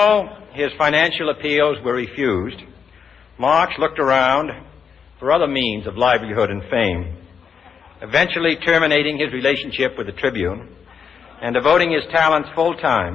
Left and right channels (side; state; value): right; quieter; 6.7 dB